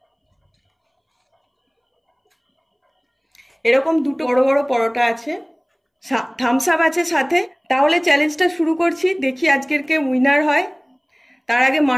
এরকম 2টো বড় বড় পরোটা আছে, থামস আপ আছে সাথে। তাহলে চ্যালেঞ্জটা শুরু করছি, দেখি আজকের কে উইনার হয়। তার আগে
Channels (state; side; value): identical; both; correlation 1.00